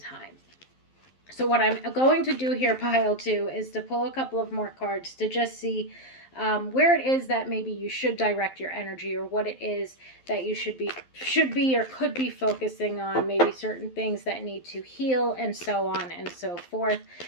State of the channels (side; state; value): right; late; 11 ms